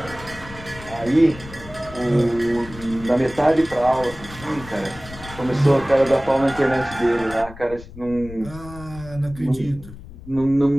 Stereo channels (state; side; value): noise; left; rumble, 16 dB below the sound